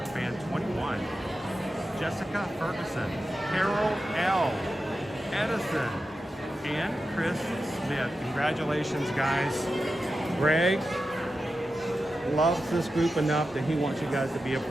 fan 21, Jessica Ferguson, Carol L, Edison, and Chris Smith. Congratulations, guys. Greg loves this group enough that he wants you guys to be a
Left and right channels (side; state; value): both; normal; correlation 0.91